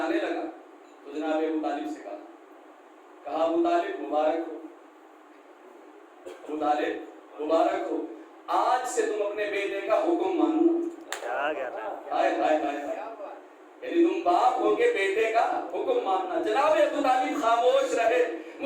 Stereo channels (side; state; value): both; identical; correlation 1.00